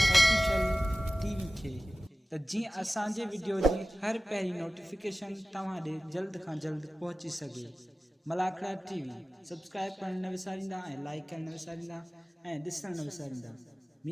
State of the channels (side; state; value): both; normal; correlation 0.96